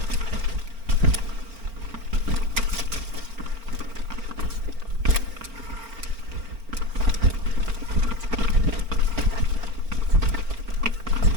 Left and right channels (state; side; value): late; left; 4.4 ms